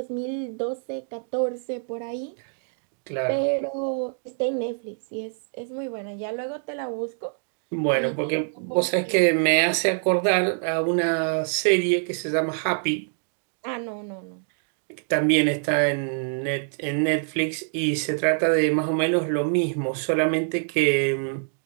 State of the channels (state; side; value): silent; left; 61 dB below the other